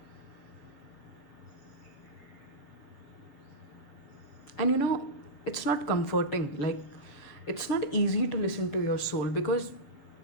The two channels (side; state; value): right; late; 7.1 ms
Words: And it's not comforting. Like, it's not easy to listen to your soul, because